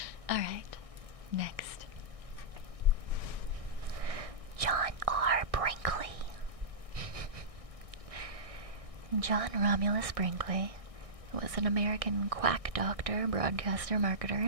Alright, next. John R. Brinkley. John Romulus Brinkley was an American quack doctor, broadcaster, marketer,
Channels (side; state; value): left; late; 1.6 ms